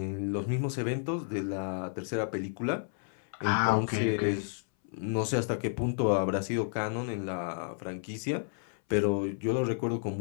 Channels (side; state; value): right; silent; 57 dB below the other